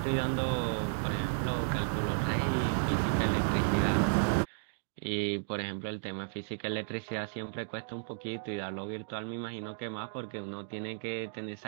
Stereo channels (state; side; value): silent; left; digital silence